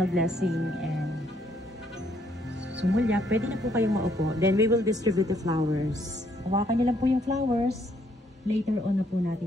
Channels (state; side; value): normal; both; correlation 0.69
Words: blessing and sumulya, pwede na po kayong maupo. Then we will distribute the flowers. Hawakan nyo lang po yung flowers. Later on na po